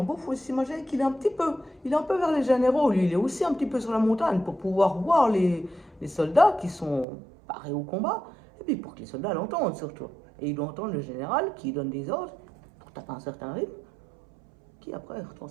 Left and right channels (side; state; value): left; drops out; at 7.1 s